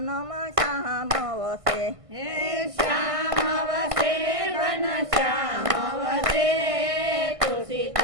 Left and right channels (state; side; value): late; left; 1.5 ms